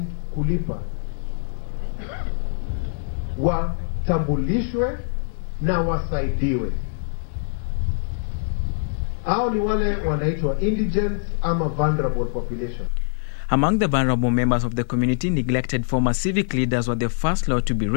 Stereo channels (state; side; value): silent; right; 63 dB below the other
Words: kulipa watambulishwe na wasaidiwe. Hao ni wale wanaitwa indigent ama vulnerable population. Among the vulnerable members of the community, neglected former civic leaders were the first lot to be